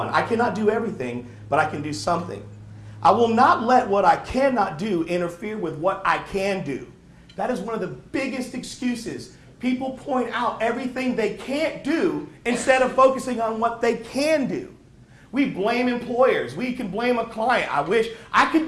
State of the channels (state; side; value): identical; both; correlation 1.00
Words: I cannot do everything, but I can do something. I will not let what I cannot do interfere with what I can do. That is one of the biggest excuses. People point out everything they can't do instead of focusing on what they can do. We blame employers. We can blame a client. I wish I could